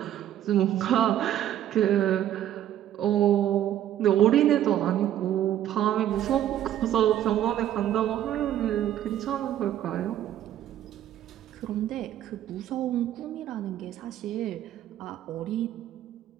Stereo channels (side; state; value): left; quieter; 11.7 dB